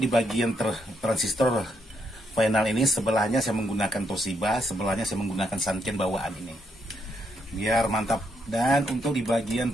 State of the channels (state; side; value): normal; both; correlation 0.76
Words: bagian transistor final ini, sebelahnya saya menggunakan Toshiba, sebelahnya saya menggunakan Sanken bawaan ini, biar mantap. Dan untuk di